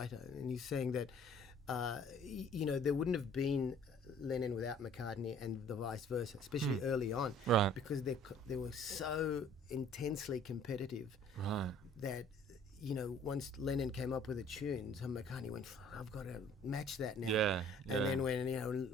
and he's saying that there wouldn't have been Lennon without McCartney, and the vice versa, especially early on, Right. because they were so intensely competitive Right. that once Lennon came up with a tune, so McCartney went, I've got to match that now. Yeah. And then when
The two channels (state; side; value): normal; both; correlation 0.54